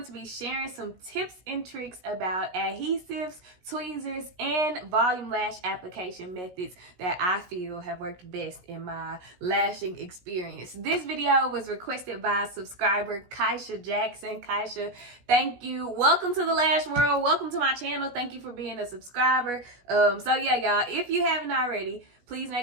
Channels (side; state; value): left; late; 17 ms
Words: to be sharing some tips and tricks about adhesives, tweezers, and volume lash application methods that I feel have worked best in my lashing experience. This video was requested by subscriber Kaisha Jackson. Kaisha, thank you. Welcome to the lash world. Welcome to my channel. Thank you for being a subscriber. So yeah, y'all, if you haven't already, please